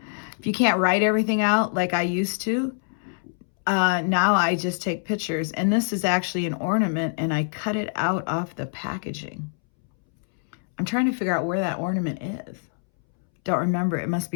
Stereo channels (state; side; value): silent; right; 62 dB below the other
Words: everything out like I used to. Now I just take pictures, and this is actually an ornament, and I cut it out off the packaging. I'm trying to figure out where that ornament is. Don't remember. It must